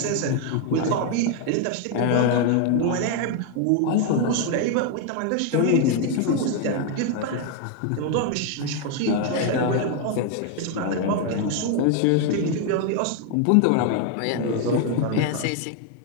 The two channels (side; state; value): both; different; correlation 0.01